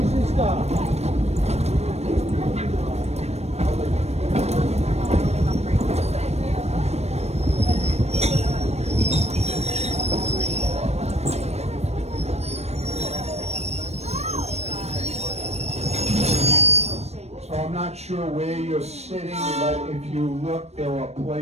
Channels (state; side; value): late; left; 0.31 ms